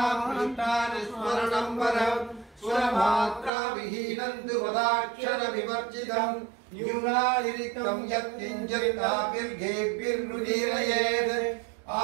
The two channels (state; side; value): drops out; left; at 3.5 s